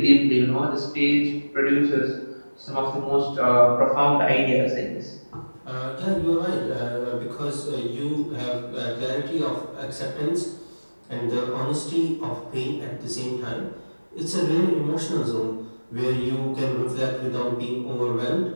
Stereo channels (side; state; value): both; inverted; correlation -1.00